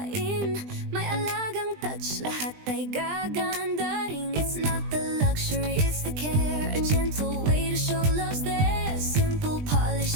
may alagang touch, lahat ay gaganda rin. It's not the luxury, it's the care, a gentle way to show love's there. Simple polish,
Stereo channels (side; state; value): left; late; 20 ms